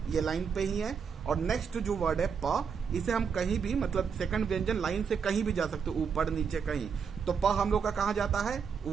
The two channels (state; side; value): quieter; left; 6.4 dB